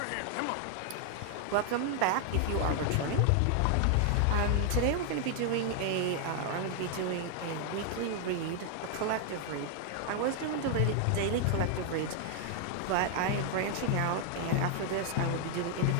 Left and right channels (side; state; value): both; different; correlation 0.00